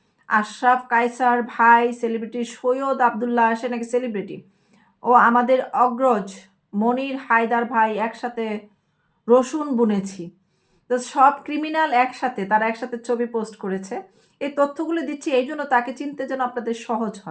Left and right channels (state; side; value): identical; both; correlation 1.00